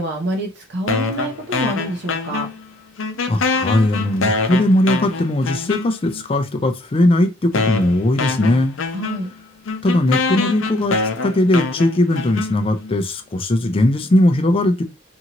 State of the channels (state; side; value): normal; both; correlation 0.67